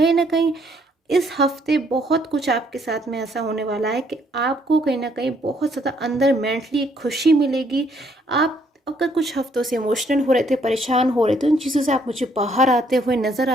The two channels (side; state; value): both; normal; correlation 0.67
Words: ना कहीं इस हफ्ते बहुत कुछ आपके साथ में ऐसा होने वाला है कि आपको कहीं ना कहीं बहुत ज़्यादा अंदर मेंटली खुशी मिलेगी। आप अगर कुछ हफ्तों से इमोशनल हो रहे थे, परेशान हो रहे थे, उन चीज़ों से आप मुझे बाहर आते हुए नज़र